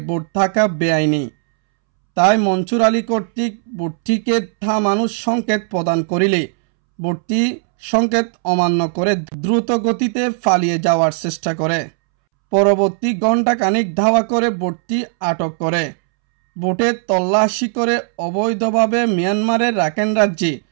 বোট থাকা বেআইনি। তাই মনসুর আলী কর্তৃক বোটটিকে থামানোর সংকেত প্রদান করিলে বোটটি সংকেত অমান্য করে দ্রুত গতিতে পালিয়ে যাওয়ার চেষ্টা করে। পরবর্তী ঘণ্টাখানিক ধাওয়া করে বোটটি আটক করে। বোটে তল্লাশি করে অবৈধভাবে মিয়ানমারের রাখাইন রাজ্যে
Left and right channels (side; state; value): left; silent; 68 dB below the other